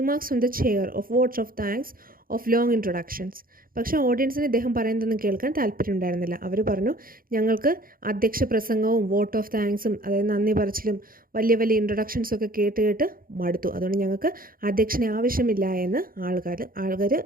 from the chair, of votes of thanks, of long introductions. പക്ഷേ ഓഡിയൻസിന് ഇദ്ദേഹം പറയുന്നതൊന്നും കേൾക്കാൻ താല്പര്യമുണ്ടായിരുന്നില്ല. അവർ പറഞ്ഞു, ഞങ്ങൾക്ക് അധ്യക്ഷ പ്രസംഗവും വോട്ട് ഓഫ് താങ്ക്സും, അതായത് നന്ദി പറച്ചിലും വലിയ വലിയ ഇൻട്രൊഡക്ഷൻസും ഒക്കെ കേട്ട് മടുത്തു. അതുകൊണ്ട് ഞങ്ങൾക്ക് അധ്യക്ഷനെ ആവശ്യമില്ല എന്ന്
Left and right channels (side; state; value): left; late; 0.42 ms